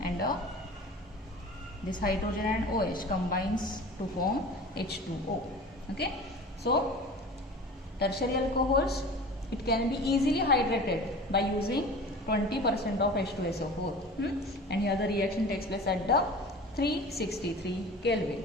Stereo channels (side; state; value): both; normal; correlation 0.38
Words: And this hydrogen and OH combines to form H2O. Okay, so tertiary alcohols, it can be easily hydrated by using 20% of H2SO4. And here the reaction takes place at the 363 Kelvin.